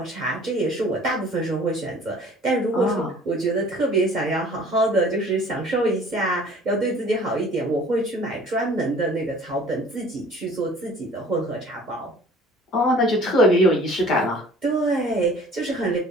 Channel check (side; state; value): both; normal; correlation 0.49